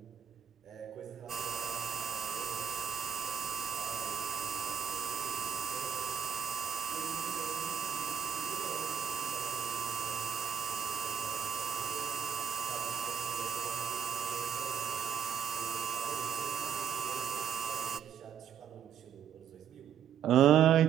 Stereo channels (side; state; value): left; quieter; 8.5 dB